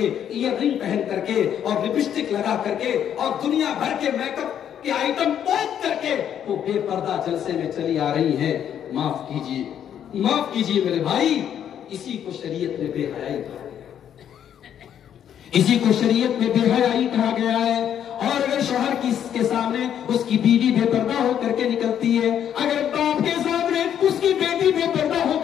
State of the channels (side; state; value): right; quieter; 9.5 dB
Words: ایئر رنگ پہن کر کے، اور لپسٹک لگا کر کے، اور دنیا بھر کے میک اپ کے آئٹم پوچھ کر کے وہ بے پردہ جلسے میں چلی آ رہی ہیں. معاف کیجیے میرے بھائی، اسی کو شریعت میں بے حیائی کہا گیا، اسی کو شریعت میں بے حیائی کہا گیا ہے. اور اگر شوہر کے سامنے اس کی بیوی بے پردہ ہو کر کے نکلتی ہے، اگر باپ کے سامنے اس کی بیٹی بے پردہ ہو